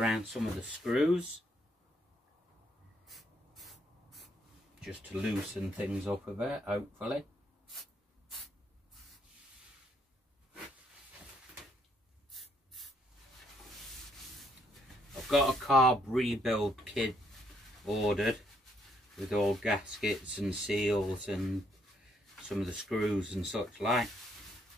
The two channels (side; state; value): both; normal; correlation 0.72